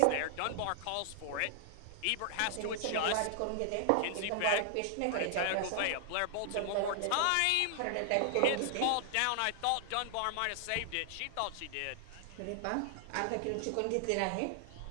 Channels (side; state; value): both; different; correlation -0.01